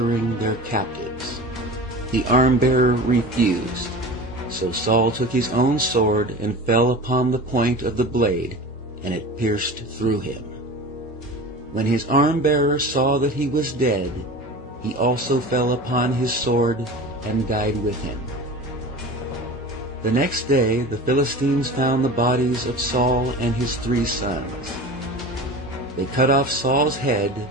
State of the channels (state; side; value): normal; both; correlation 0.35